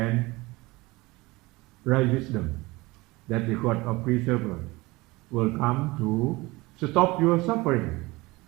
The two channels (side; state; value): left; quieter; 22.0 dB